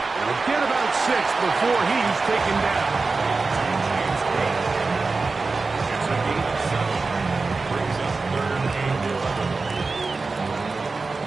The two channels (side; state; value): left; quieter; 4.0 dB